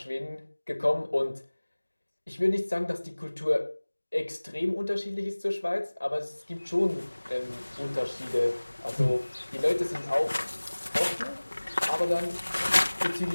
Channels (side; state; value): both; inverted; correlation -1.00